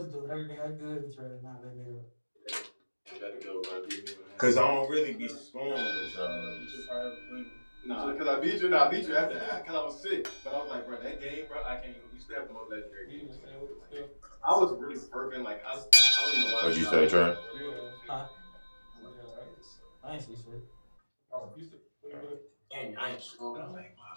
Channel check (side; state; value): both; inverted; correlation -1.00